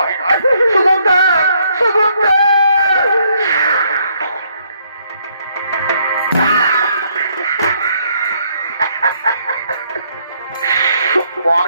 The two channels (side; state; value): both; inverted; correlation -0.70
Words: না। সুগন্ধা সুগন্ধা